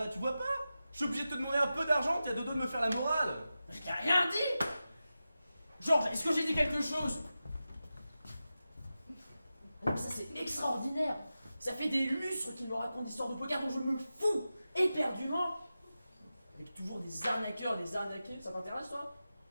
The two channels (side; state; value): both; inverted; correlation -0.93